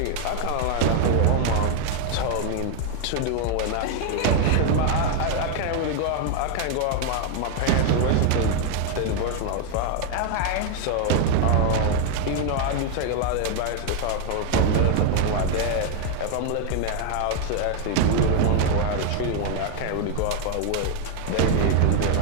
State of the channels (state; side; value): different; both; correlation 0.01